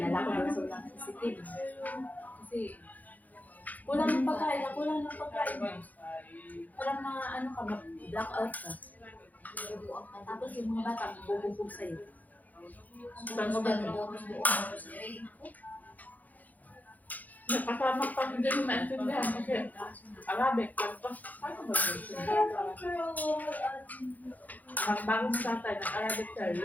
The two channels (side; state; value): right; late; 0.080 ms